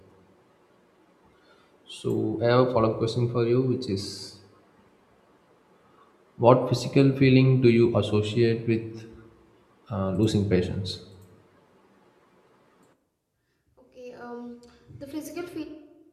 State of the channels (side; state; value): both; identical; correlation 1.00